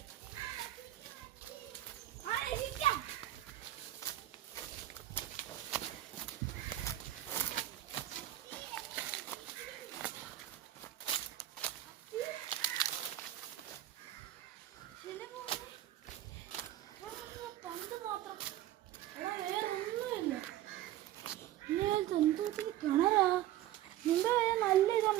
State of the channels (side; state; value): left; quieter; 13.6 dB